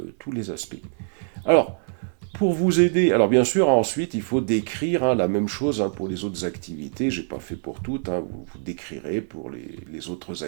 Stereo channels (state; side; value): silent; left; 62 dB below the other